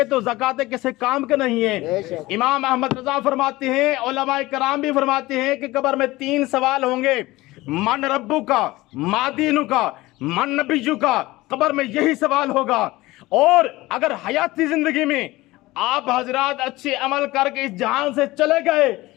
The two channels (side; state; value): right; quieter; 19.2 dB